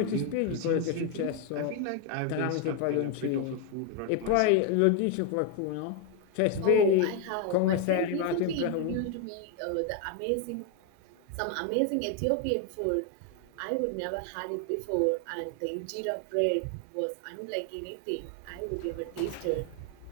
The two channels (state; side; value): different; both; correlation 0.01